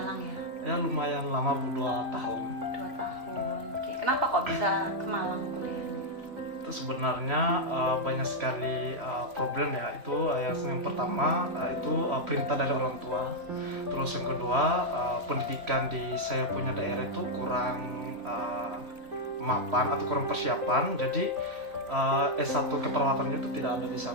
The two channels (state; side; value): late; left; 3.0 ms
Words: ya? Ya lumayan lama, 2 tahun. 2 tahun. Oke, kenapa kok bisa ke Malang kuliahnya? Itu sebenarnya banyak sekali problem ya. Itu yang pertama itu perintah dari orang tua. Terus yang kedua, pendidikan di saya punya daerah itu kurang mapan atau kurang persiapan. Jadi S1 keperawatannya itu tidak ada di